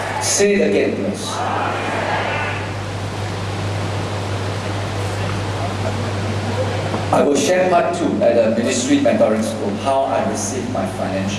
Say it again, please. I will share part 2 at the ministry mentoring school, how I received my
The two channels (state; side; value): identical; both; correlation 1.00